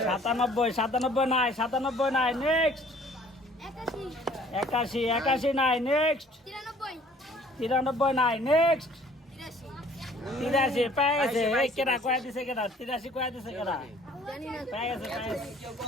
97 নাই, 97 নাই, নেক্সট। 81 নাই, নেক্সট। 93 নাই, নেক্সট। 83 পেয়ে গেছে। এই কেডা কয়া দিছে, কেডা 83 কয়া দিছে, কেডা পেয়ে গেছে, পেয়ে গেছে।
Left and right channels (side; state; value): both; normal; correlation 0.55